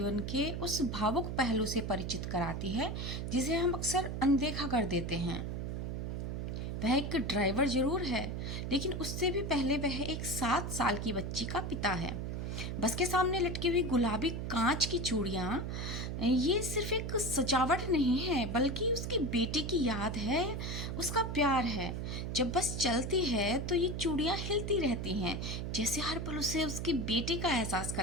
के उस भावुक पहलू से परिचित कराती है जिसे हम अक्सर अनदेखा कर देते हैं। वह एक ड्राइवर जरूर है, लेकिन उससे भी पहले वह एक 7 साल की बच्ची का पिता है। बस के सामने लटकी हुई गुलाबी कांच की चूड़ियाँ ये सिर्फ एक सजावट नहीं है, बल्कि उसकी बेटी की याद है, उसका प्यार है। जब बस चलती है तो ये चूड़ियाँ हिलती रहती हैं, जैसे हर पल उसे उसकी बेटी का एहसास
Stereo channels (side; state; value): right; noise; hum, 3 dB below the sound